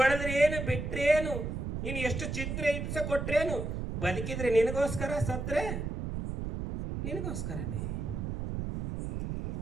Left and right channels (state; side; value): noise; right; rumble, 4 dB below the sound